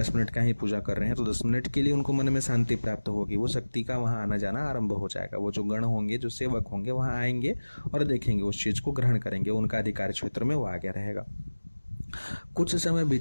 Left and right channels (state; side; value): inverted; both; correlation -1.00